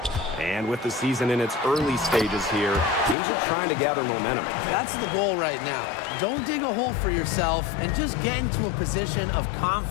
And with the season in its early stages here, teams are trying to gather momentum. That's the goal right now. Don't dig a hole for yourself and just get into a position of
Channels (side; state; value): right; drops out; at 3.2 s